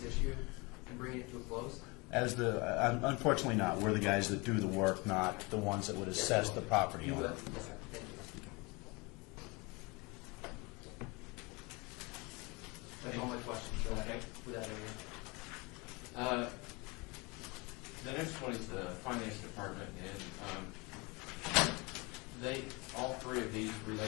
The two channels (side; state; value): right; quieter; 27.0 dB